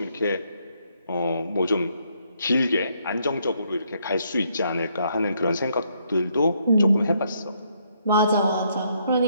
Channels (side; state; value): both; inverted; correlation -0.72